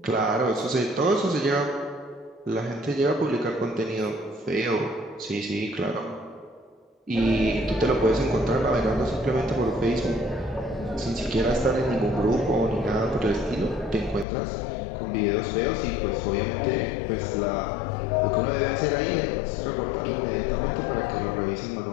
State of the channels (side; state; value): right; drops out; at 14.2 s